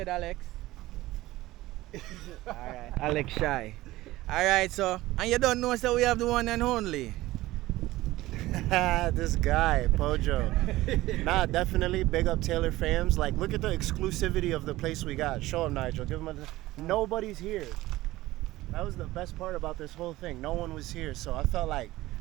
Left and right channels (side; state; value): left; quieter; 17.5 dB